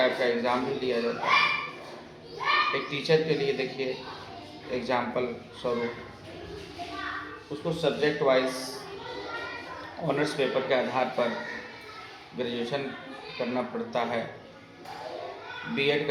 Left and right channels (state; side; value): identical; both; correlation 1.00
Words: का एग्ज़ाम भी लिया जाता है। एक टीचर के लिए देखिए, एग्जाम्पल स्वरूप उसको सब्जेक्ट वाइज ऑनर्स पेपर के आधार पर ग्रेजुएशन करना पड़ता है, बीएड